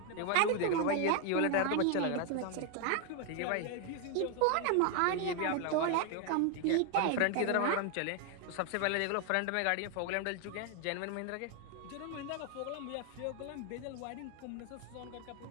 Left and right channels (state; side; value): different; both; correlation 0.01